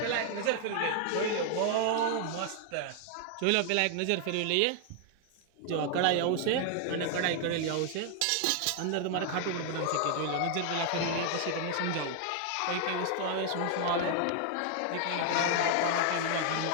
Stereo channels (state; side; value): different; both; correlation 0.00